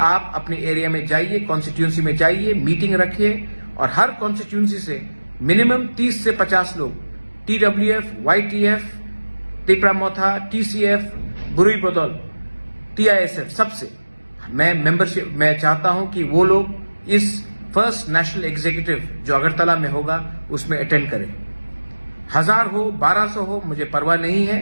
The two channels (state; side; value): inverted; both; correlation -1.00